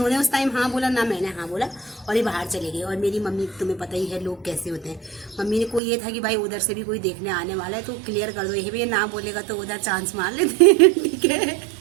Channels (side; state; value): left; drops out; at 5.8 s